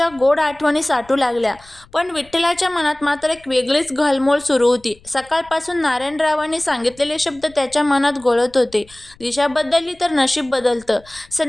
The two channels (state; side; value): noise; left; rumble, 26 dB below the sound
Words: गोड आठवणी साठू लागल्या. पण विठ्ठलाच्या मनात मात्र एक वेगळीच घालमोल सुरू होती. सकाळपासून नारायणरावांनी सांगितलेले शब्द त्याच्या मनात घोळत होते. दिशा बदलली तर नशीब बदलतं.